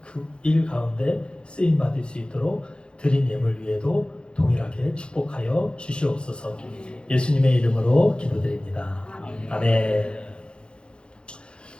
그 일 가운데 쓰임 받을 수 있도록 드린 예물 위에도 동일하게 축복하여 주시옵소서. 예수님의 이름으로 기도드립니다. 아멘.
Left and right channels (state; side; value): late; right; 0.054 ms